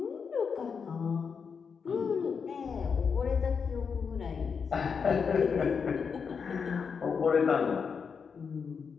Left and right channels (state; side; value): quieter; right; 6.0 dB